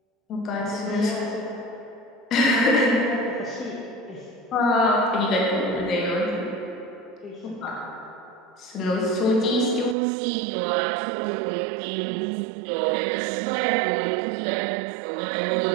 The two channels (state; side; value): drops out; left; at 10.0 s